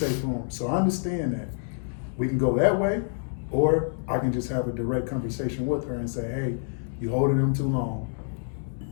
room. So I understand that we can go that way. Or I can just have a direct conversation with her and say, hey, you holding them too long.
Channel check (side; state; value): right; silent; digital silence